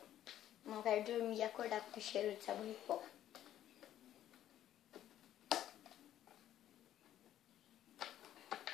Não quero dormir e acordar com cheiro de sabão em pó.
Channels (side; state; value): right; quieter; 11.8 dB